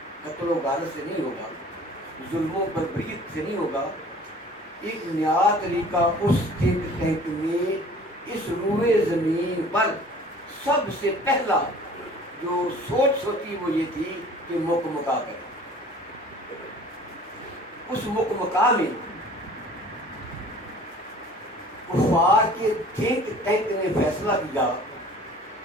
قتل و غارت سے نہیں ہوگا، ظلم و بربریت سے نہیں ہوگا۔ ایک نیا طریقہ اس تھنک ٹینک میں اس روئے زمین پر سب سے پہلا جو سوچ سوچی وہ یہ تھی کہ مک مکا کرے۔ اس مک مکا میں کفار کے تھنک ٹینک نے فیصلہ کیا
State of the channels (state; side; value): normal; both; correlation 0.48